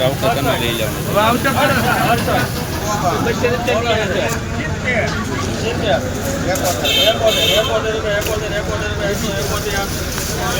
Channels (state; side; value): identical; both; correlation 1.00